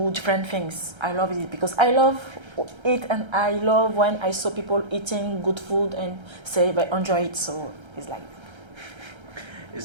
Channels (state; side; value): late; left; 1.3 ms